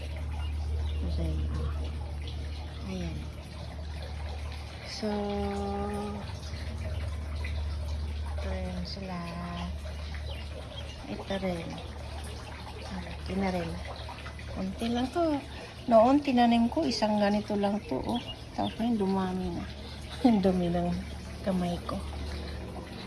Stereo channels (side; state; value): both; identical; correlation 1.00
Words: Ayan. So, ito rin sila. Ito rin. Malaki na rin. Kunti lang to. Noon, tinanim ko, isang ganito lang to. Oh. Tapos ngayon, dumami na. Dumi ng kamay ko.